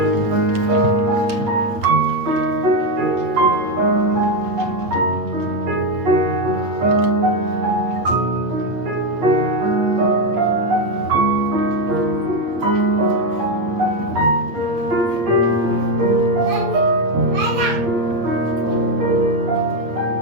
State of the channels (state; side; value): late; left; 8.4 ms